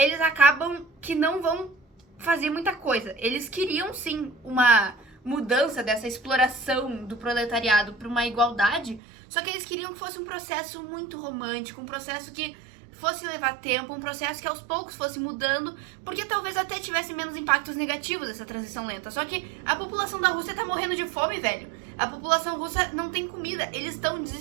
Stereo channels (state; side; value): drops out; left; at 9.0 s